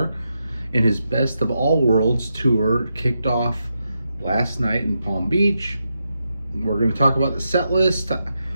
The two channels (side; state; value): both; inverted; correlation -0.85